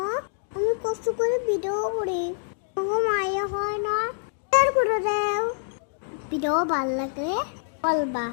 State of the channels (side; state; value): right; silent; digital silence